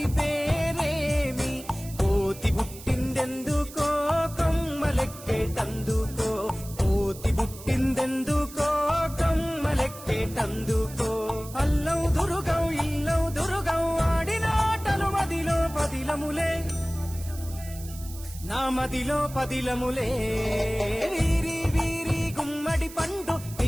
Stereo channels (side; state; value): right; noise; hiss, 16 dB below the sound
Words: పేరేమి, కోతి పుట్టిందెందుకో కొమ్మలెక్కేటందుకో, కోతి పుట్టిందెందుకో కొమ్మలెక్కేటందుకో, అల్లం దురుగం ఇల్లం దురుగం ఆడిన ఆటలు మదిలో పదిలములే, నా మదిలో పదిలములే. వీరి వీరి గుమ్మడి పండు